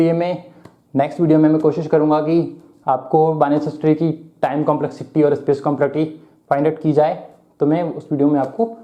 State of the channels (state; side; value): identical; both; correlation 1.00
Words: मैं नेक्स्ट वीडियो में मैं कोशिश करूंगा कि आपको बाइनरी सर्च ट्री की टाइम कॉम्प्लेक्सिटी और स्पेस कॉम्प्लेक्सिटी फाइंड आउट की जाए, तो मैं उस वीडियो में आपको